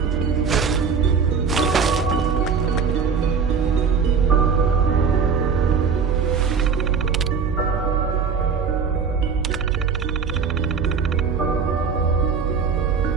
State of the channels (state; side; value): quieter; left; 5.9 dB